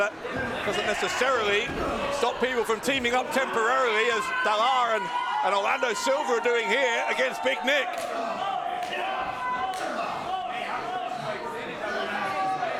doesn't necessarily stop people from teaming up temporarily, as Dalar and Orlando Silva are doing here against Big Nick.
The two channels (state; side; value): identical; both; correlation 1.00